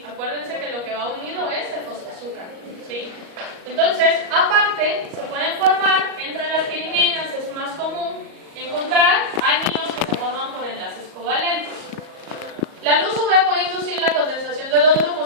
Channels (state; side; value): late; left; 38 ms